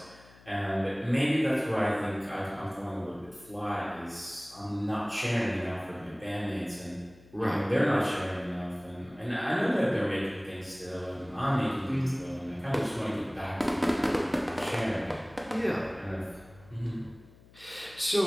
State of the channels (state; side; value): noise; left; hum, 24 dB below the sound